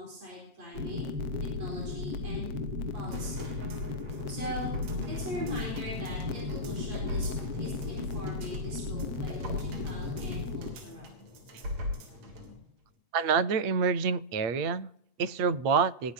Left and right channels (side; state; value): left; late; 8.7 ms